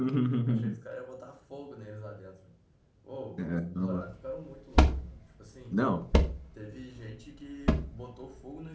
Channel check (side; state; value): both; identical; correlation 1.00